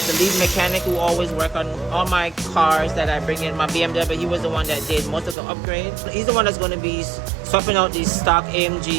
lead mechanic who always work on all my cars that I bring in. My BMW, he was the one that did most of the upgrades. He's the one that's going to be swapping out these stock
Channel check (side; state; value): left; drops out; at 5.4 s